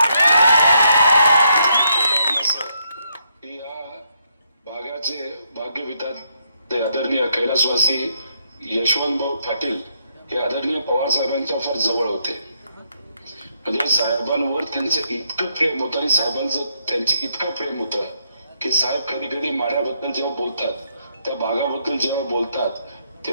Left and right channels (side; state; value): both; inverted; correlation -0.75